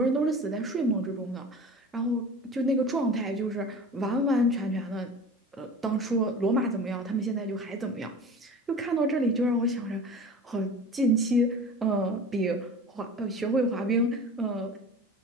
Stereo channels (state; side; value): normal; both; correlation 0.37